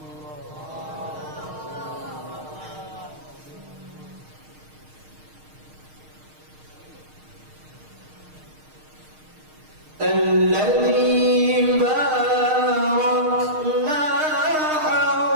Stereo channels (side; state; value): left; late; 6.5 ms